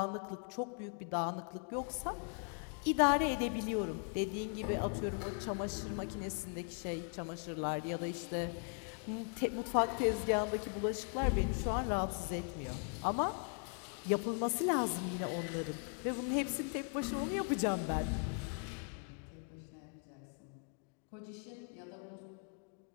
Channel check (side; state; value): right; quieter; 38.2 dB